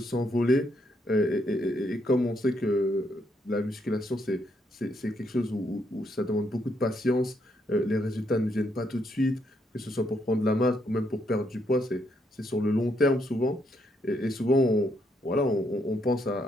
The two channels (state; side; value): normal; both; correlation 0.75